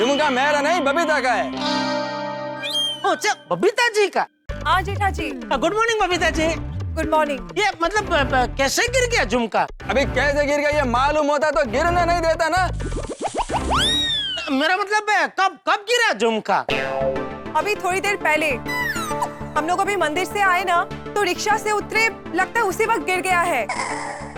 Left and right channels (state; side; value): identical; both; correlation 1.00